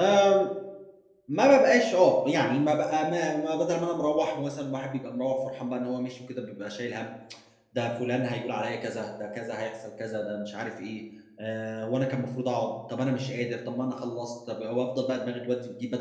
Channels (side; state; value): both; identical; correlation 1.00